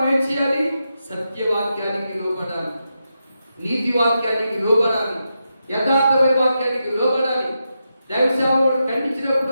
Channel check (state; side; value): inverted; both; correlation -0.87